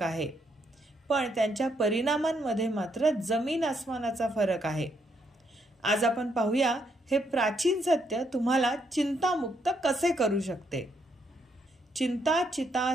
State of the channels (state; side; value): normal; both; correlation 0.75